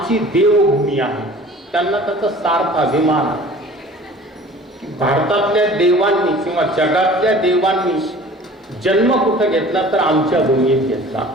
देवभूमी आहे, त्यांना त्याचा सार्थ अभिमान आहे की भारतातल्या देवांनी किंवा जगातल्या देवांनी जन्म कुठं घेतला तर आमच्या भूमीत घेतला,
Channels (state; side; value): normal; both; correlation 0.45